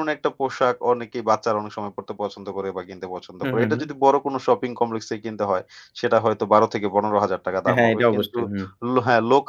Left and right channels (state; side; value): identical; both; correlation 1.00